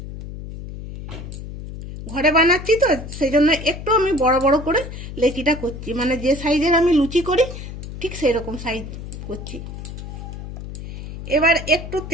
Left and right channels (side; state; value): left; noise; hum, 10 dB below the sound